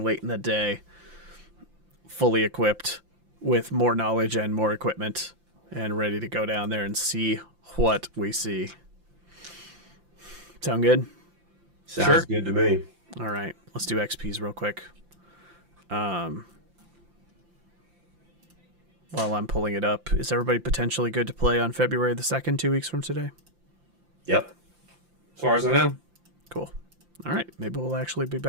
late in the day, fully equipped with more knowledge and more equipment, and ready to go down there and see what we see. Sound good? Sounds good to me. All right, let's do XPs real quick. While I'm pulling it up, is everybody potentially good to play on February the 2nd, 2 weeks from today? Yep. As far as I know. Cool. All right, maybe we'll actually be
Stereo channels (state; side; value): late; left; 5.8 ms